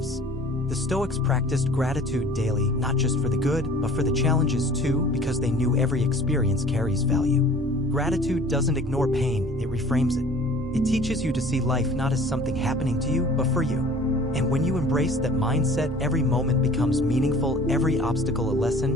The Stoics practiced gratitude daily, not just for the good, but for the challenges too, because they knew every experience carries value. Gratitude doesn't ignore pain, it reframes it. It teaches you to see life not as something happening to you, but for you. And when you embrace that mindset, every moment becomes meaningful, every obstacle a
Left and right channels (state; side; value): normal; both; correlation 0.48